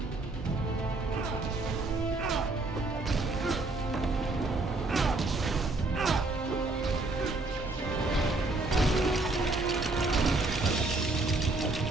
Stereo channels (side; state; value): left; quieter; 3.1 dB